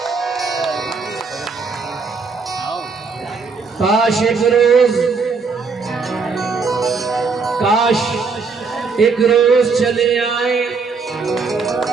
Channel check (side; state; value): left; quieter; 4.8 dB